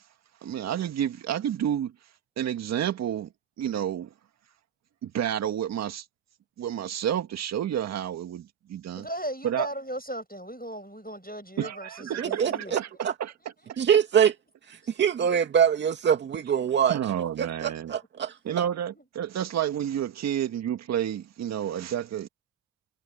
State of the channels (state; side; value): quieter; left; 8.3 dB